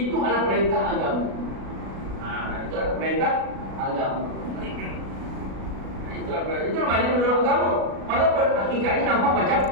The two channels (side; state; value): left; late; 37 ms